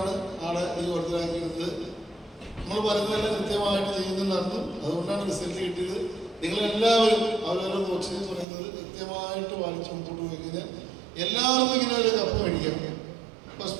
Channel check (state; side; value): drops out; left; at 8.5 s